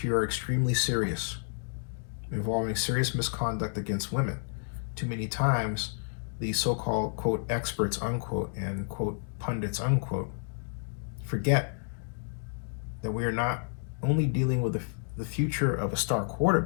are extremely serious, involving serious misconduct against women. Too many times, the so-called, quote, experts, unquote, and, quote, pundits, unquote, forget that we are not only dealing with the future of a star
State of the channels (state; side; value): silent; right; digital silence